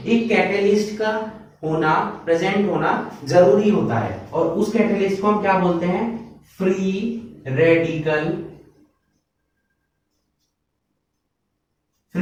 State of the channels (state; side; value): identical; both; correlation 1.00